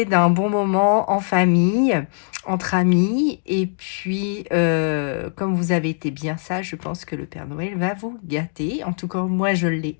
d'un bon moment en famille, entre amis. Et puis, comme vous avez été bien sage, je pense que le Père Noël va vous gâter. En tout cas, moi, je l'ai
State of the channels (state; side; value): silent; right; digital silence